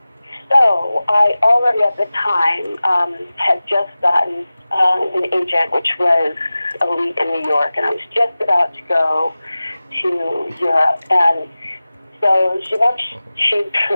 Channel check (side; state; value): both; inverted; correlation -0.97